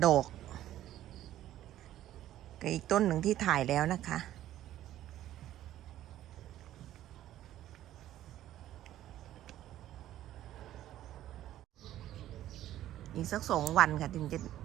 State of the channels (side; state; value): left; quieter; 13.0 dB